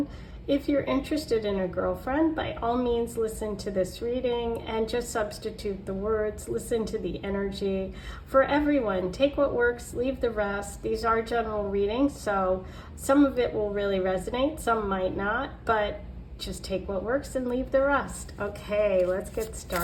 if you're interested in a girlfriend, by all means listen to this reading and just substitute the words, listen to the energy. For everyone, take what works, leave the rest. These are general readings, so some of it will really resonate, some might not, but just take what works and leave the rest. Okay, let's get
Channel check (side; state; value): both; identical; correlation 1.00